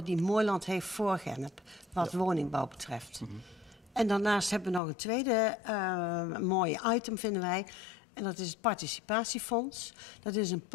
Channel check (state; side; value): drops out; right; at 4.8 s